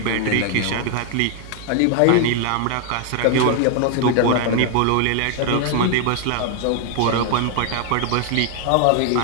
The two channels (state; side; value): different; both; correlation 0.00